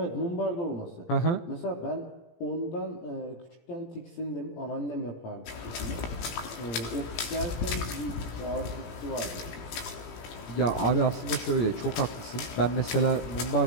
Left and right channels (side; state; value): right; late; 17 ms